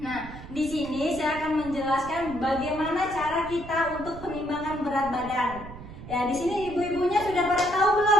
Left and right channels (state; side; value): noise; right; rumble, 13 dB below the sound